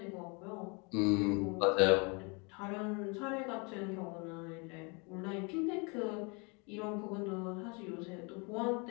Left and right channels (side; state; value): right; quieter; 31.3 dB